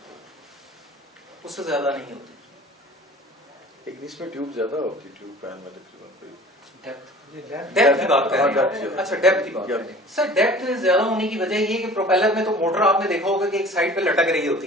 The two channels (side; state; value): both; normal; correlation 0.45